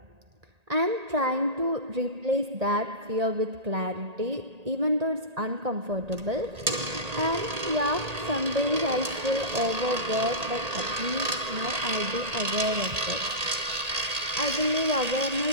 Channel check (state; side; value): late; left; 1.8 ms